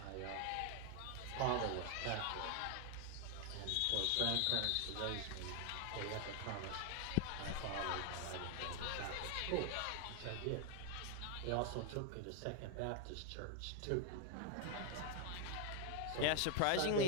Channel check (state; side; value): different; both; correlation 0.01